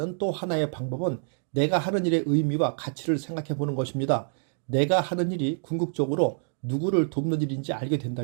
또 하나의 방법은 내가 하는 일의 의미와 가치를 생각해 보는 것입니다. 내가 하는 일이 궁극적으로 누구를 돕는 일인지 알게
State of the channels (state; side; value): silent; left; 57 dB below the other